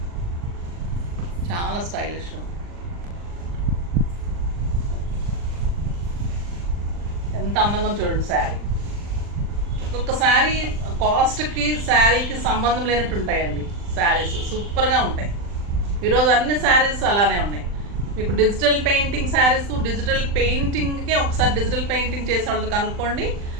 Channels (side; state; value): left; late; 39 ms